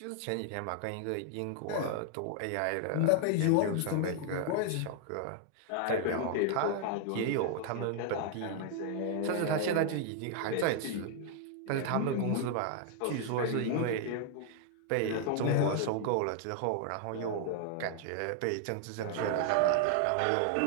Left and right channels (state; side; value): different; both; correlation 0.00